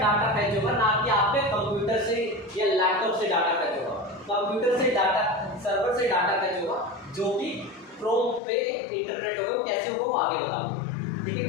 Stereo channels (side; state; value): right; drops out; at 8.4 s